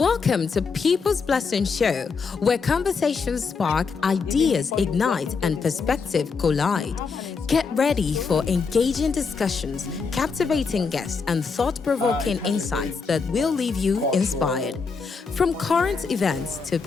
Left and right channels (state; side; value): quieter; right; 5.1 dB